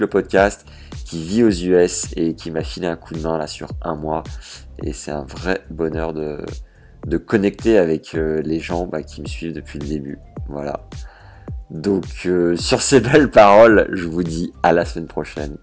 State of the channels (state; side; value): identical; both; correlation 1.00